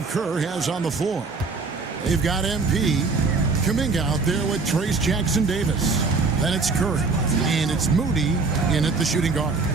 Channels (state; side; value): quieter; left; 4.2 dB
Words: Kerr has on the floor. They've got MP, Kuminga out there with Trace Jackson-Davis. Then it's Curry, and it's Moody in at the shooting guard.